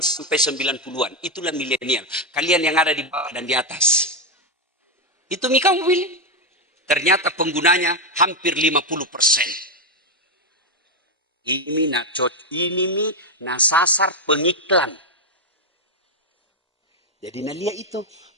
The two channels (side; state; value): both; normal; correlation 0.05